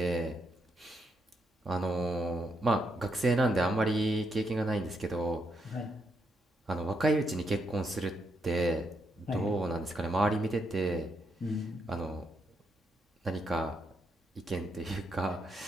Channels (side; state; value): both; normal; correlation 0.78